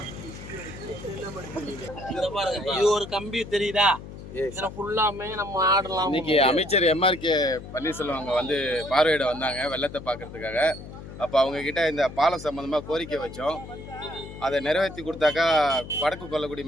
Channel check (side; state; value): left; noise; hum, 13 dB below the sound